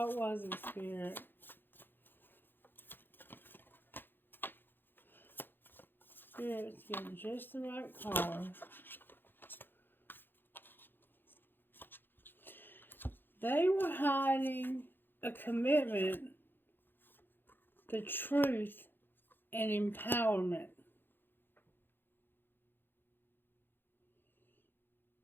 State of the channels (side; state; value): right; late; 0.098 ms